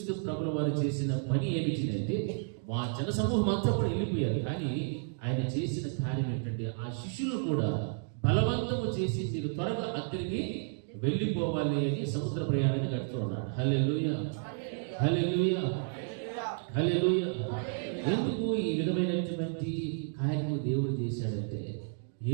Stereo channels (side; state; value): left; silent; 57 dB below the other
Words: ప్రభువు వారు చేసిన పని ఏమిటి అంటే ఆ జన సమూహం అంతా కూడా వెళ్ళిపోయారు. కానీ ఆయన చేసిన కార్యం ఏంటంటే ఆ శిష్యులు కూడా బలవంతము చేసి మీరు త్వరగా అక్కడికి వెళ్ళిపోవాలి అని సముద్ర ప్రయాణాన్ని గడుతూ ఉన్నాడు. హల్లెలూయా, హల్లెలూయా, హల్లెలూయా. ఎందుకు ఈ విధమైనటువంటి కార్యము దేవుడు చేశాడంటే